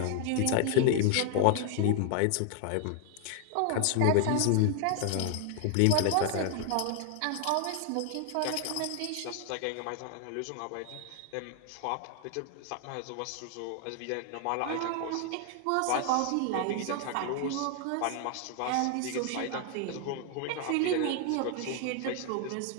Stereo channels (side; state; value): both; different; correlation 0.00